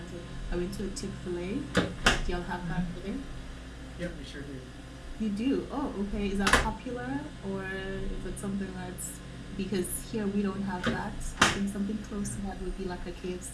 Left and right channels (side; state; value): both; identical; correlation 1.00